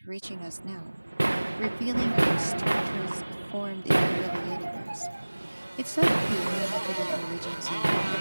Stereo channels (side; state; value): both; inverted; correlation -1.00